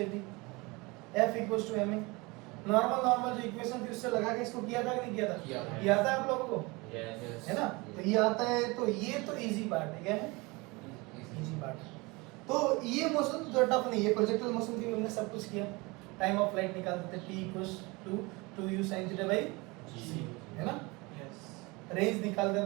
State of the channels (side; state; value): left; quieter; 25.1 dB